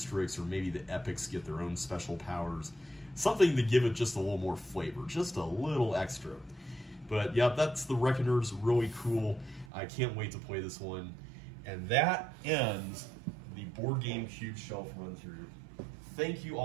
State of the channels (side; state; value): left; drops out; at 9.7 s